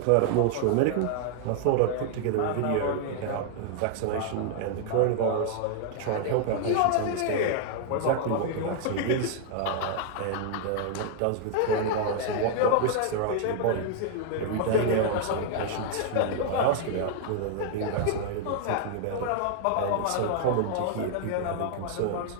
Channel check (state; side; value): different; both; correlation 0.00